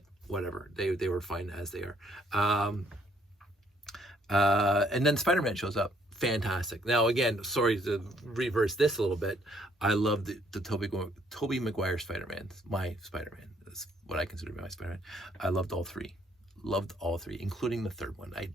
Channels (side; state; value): both; normal; correlation 0.67